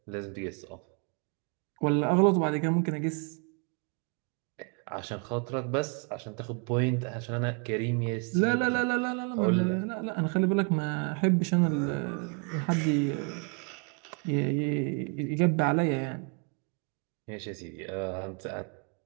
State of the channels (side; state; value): left; quieter; 37.1 dB